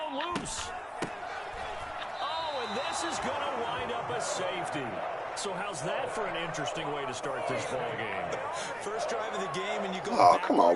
loose. Oh, and this is going to wind up a safety. So how's that for an interesting way to start this ball game? First drive of the game, and you go. Oh, come on,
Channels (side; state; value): both; identical; correlation 1.00